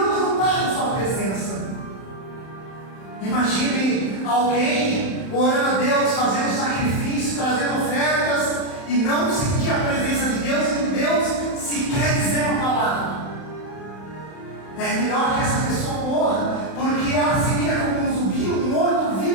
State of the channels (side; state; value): right; late; 31 ms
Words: não está com sua presença. Imagine alguém orando a Deus, fazendo sacrifício, trazendo ofertas e não sentir a presença de Deus e Deus sequer dizer uma palavra. É melhor que essa pessoa morra, porque ela seria como um zumbi, um